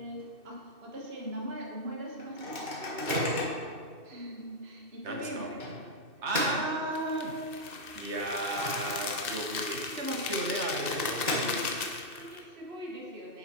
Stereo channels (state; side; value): late; left; 2.6 ms